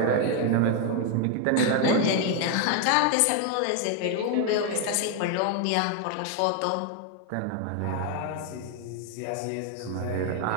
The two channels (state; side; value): different; both; correlation 0.01